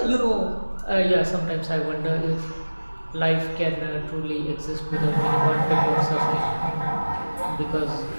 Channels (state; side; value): inverted; both; correlation -1.00